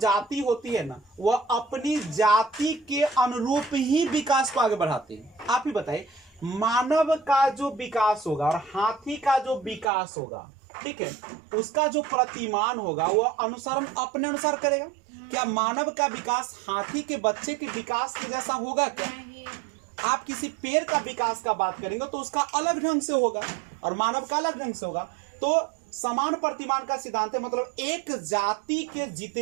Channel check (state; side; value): drops out; left; at 9.9 s